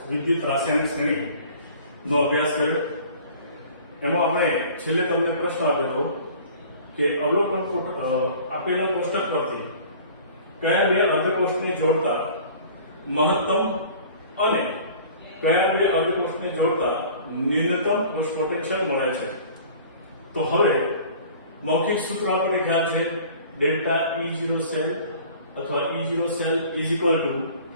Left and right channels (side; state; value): both; inverted; correlation -0.46